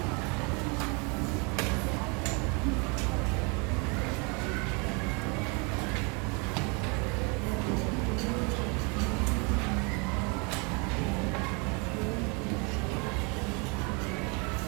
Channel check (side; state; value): left; quieter; 31.9 dB